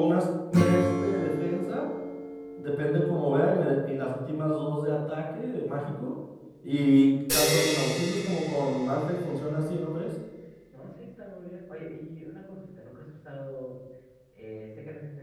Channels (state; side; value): identical; both; correlation 1.00